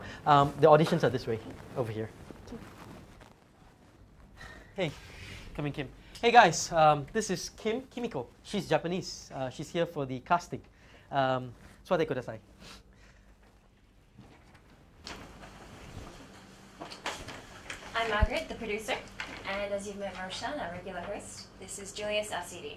The auditions are this way, over here. Hey, come in, Kim. Hey guys, this is Kimiko. She's Japanese. She's here for the casting. 座ってください. I'm Margaret, the producer, and as you've met Roshan, our regular host, this is Julius, our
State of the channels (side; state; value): both; identical; correlation 1.00